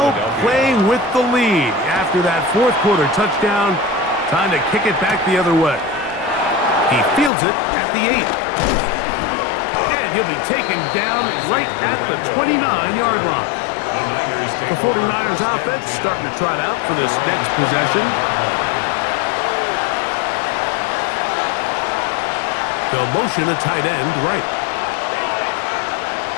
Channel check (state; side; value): drops out; right; at 7.3 s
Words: playing with the lead after that 4th quarter touchdown. Time to kick it back the other way. He fields it at the 8. And he'll be taken down right at the 29-yard line. The 49ers offense starting to trot out for this next possession. They'll motion a tight end right.